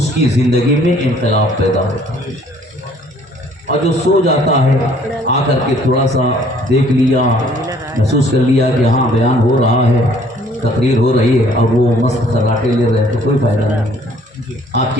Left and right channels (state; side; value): normal; both; correlation 0.59